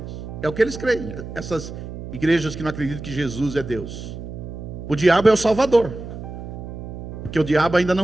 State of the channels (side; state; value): right; noise; hum, 10 dB below the sound